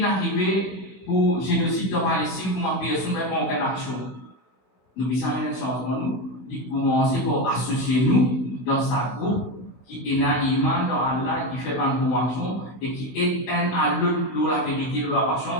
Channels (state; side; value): late; right; 16 ms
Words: pour génocide en Palestine pour une personne avec aucune action. Nous besoin un changement, nous, de commencer par associer nous dans sa groupe qui est un iman dans Allah, qui fait une bonne action et qui aide un à l'autre dans la vérité, dans la